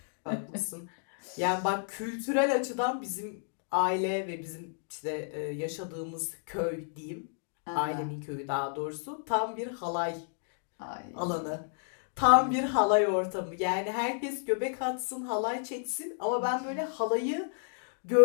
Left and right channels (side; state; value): right; silent; digital silence